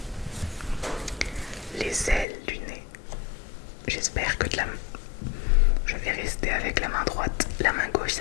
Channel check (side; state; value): right; drops out; at 2.2 s